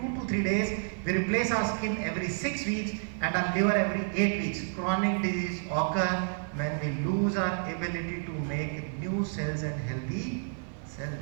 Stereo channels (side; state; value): left; silent; digital silence